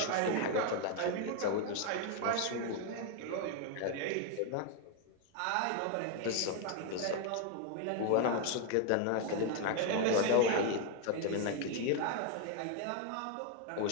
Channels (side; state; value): both; different; correlation 0.01